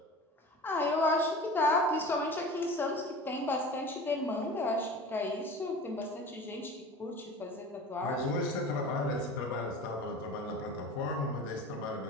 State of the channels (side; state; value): both; normal; correlation 0.37